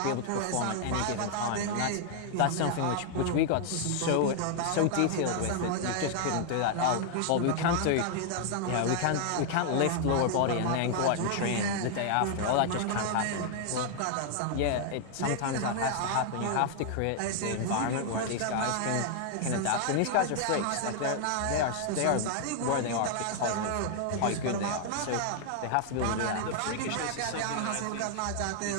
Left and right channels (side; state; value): both; different; correlation 0.00